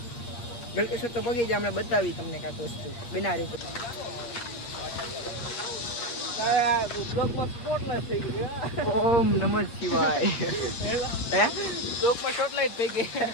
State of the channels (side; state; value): right; late; 8.4 ms